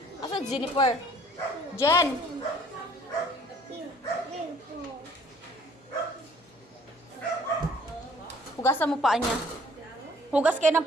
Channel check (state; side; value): normal; both; correlation 0.57